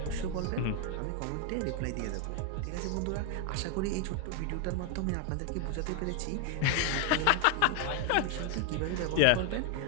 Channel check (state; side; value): different; both; correlation 0.00